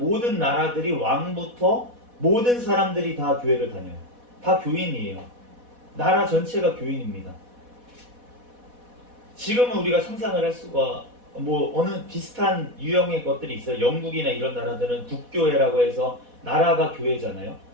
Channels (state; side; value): late; left; 4.1 ms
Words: 나라들이 왕부터 모든 사람들이 다 교회를 다녀요. 다 교인이에요. 나라 전체가 교인입니다. 지금은 우리가 상상을 할 수가 어느 비슷한 유형의 것들이 있어요. 영국이나 이런 나라들은 국교회라고 해서 나라가 교회잖아요.